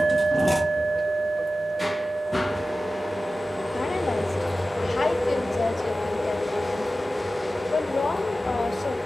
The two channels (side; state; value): both; normal; correlation 0.95